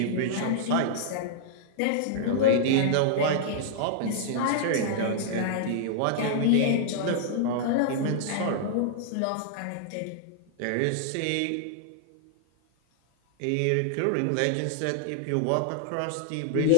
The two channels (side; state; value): both; different; correlation -0.01